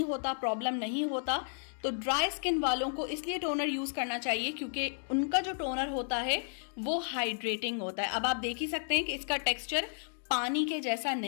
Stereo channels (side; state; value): right; silent; digital silence